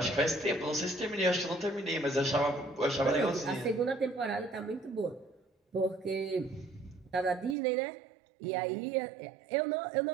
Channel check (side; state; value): left; drops out; at 7.6 s